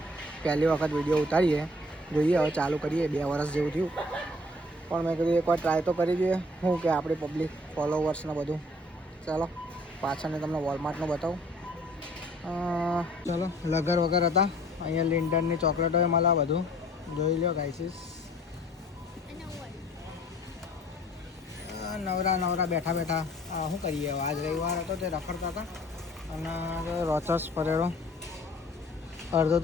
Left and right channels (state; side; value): normal; both; correlation 0.54